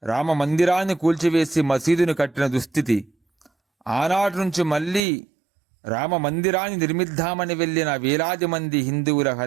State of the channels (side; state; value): left; drops out; at 5.0 s